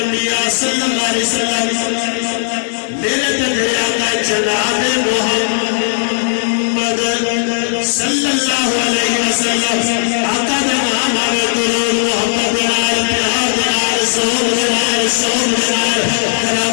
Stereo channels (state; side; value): silent; right; 65 dB below the other